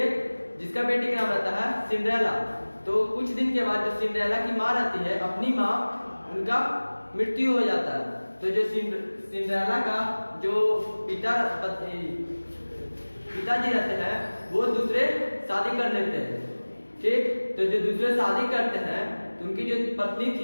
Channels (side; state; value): both; inverted; correlation -1.00